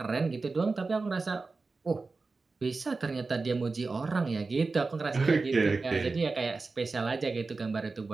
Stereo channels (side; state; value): left; quieter; 3.9 dB